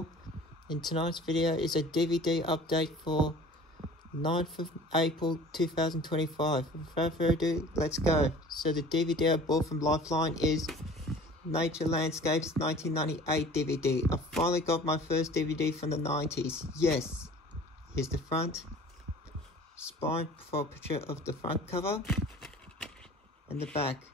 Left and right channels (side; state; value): both; normal; correlation 0.45